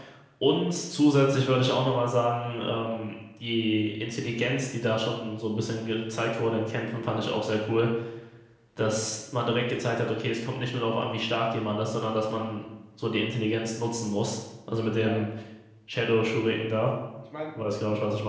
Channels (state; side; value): identical; both; correlation 1.00